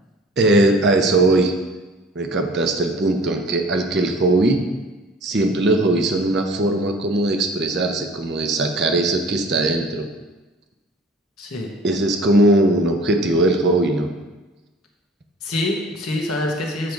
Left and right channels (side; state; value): both; normal; correlation 0.47